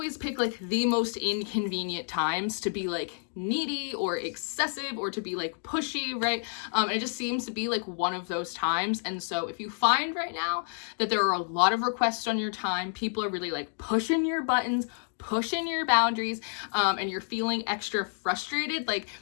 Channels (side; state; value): right; silent; 58 dB below the other